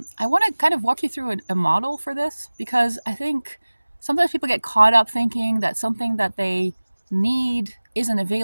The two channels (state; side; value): inverted; both; correlation -1.00